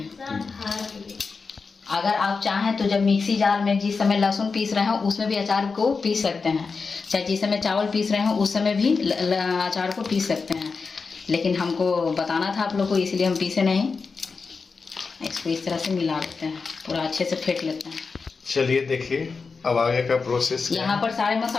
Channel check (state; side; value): quieter; right; 4.7 dB